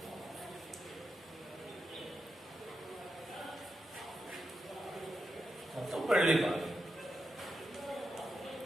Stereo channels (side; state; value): both; normal; correlation 0.86